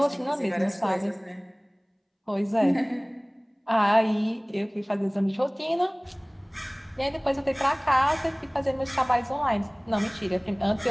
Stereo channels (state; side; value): identical; both; correlation 1.00